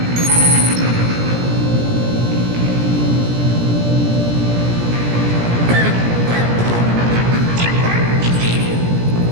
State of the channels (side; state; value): left; late; 17 ms